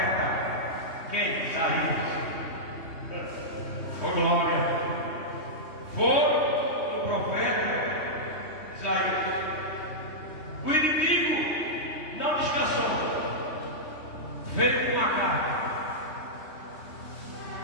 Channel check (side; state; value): right; late; 3.2 ms